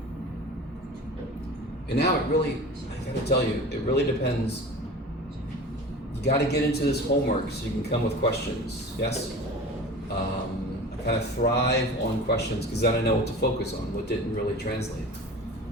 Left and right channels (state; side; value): normal; both; correlation 0.37